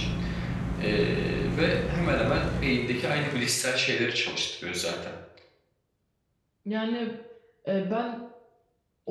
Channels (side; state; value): both; identical; correlation 1.00